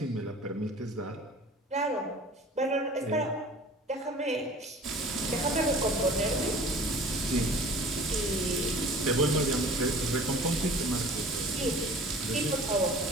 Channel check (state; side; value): normal; both; correlation 0.44